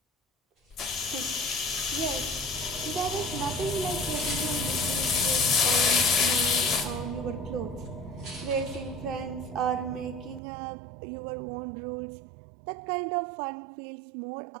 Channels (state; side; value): drops out; left; at 10.4 s